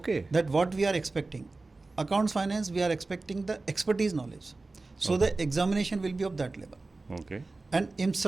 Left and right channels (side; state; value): left; quieter; 3.4 dB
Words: That what we are expecting. Accounts finance, we are expecting the expertise knowledge. So the examination will be of that level. Okay. And in